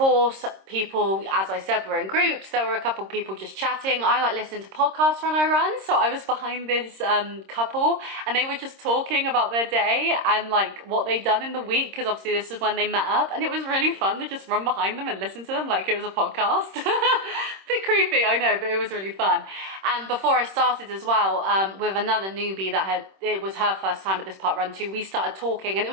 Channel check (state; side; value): late; left; 26 ms